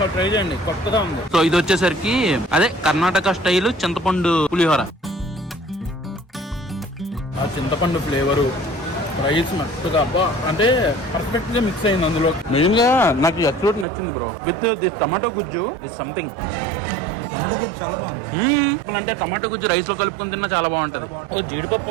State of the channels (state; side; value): drops out; left; at 13.9 s